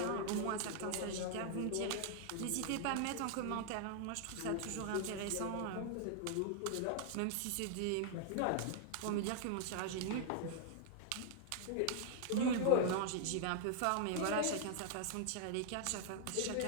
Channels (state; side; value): different; both; correlation 0.00